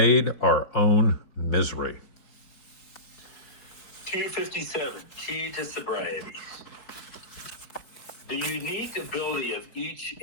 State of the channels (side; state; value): right; late; 4.9 ms